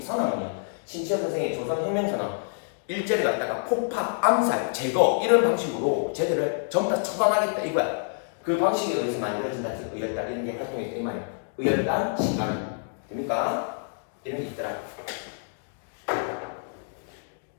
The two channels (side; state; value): right; silent; digital silence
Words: 선언문이야. 신치호 선생의 조선혁명선언 일제를 갖다가 폭파, 암살, 제거 이런 방식으로 쟤들을 전부 다 처단하겠다 이거야. 그 방식에 의해서 만들어진 단체가 의열단 이런 게 활동했다 이 말이야. 의열단, 신간은 됩니까? 이런 게 있더라.